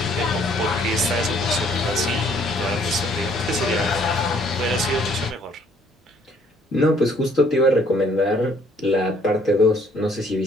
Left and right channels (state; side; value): normal; both; correlation 0.63